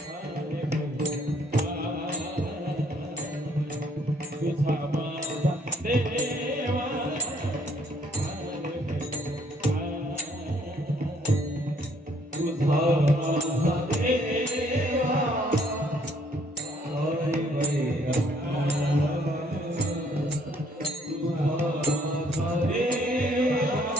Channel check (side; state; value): both; normal; correlation 0.65